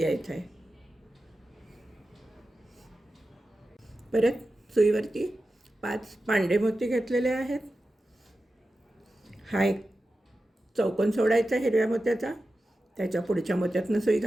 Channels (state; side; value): normal; both; correlation 0.93